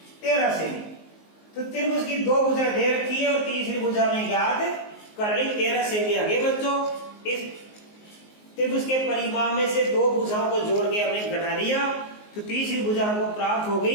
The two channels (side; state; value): right; late; 19 ms